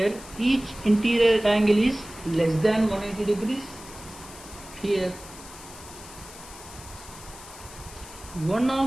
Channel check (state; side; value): noise; left; hiss, 17 dB below the sound